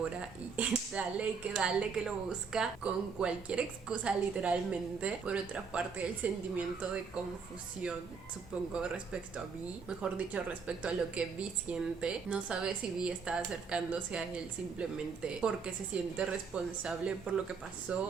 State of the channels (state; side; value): quieter; left; 5.5 dB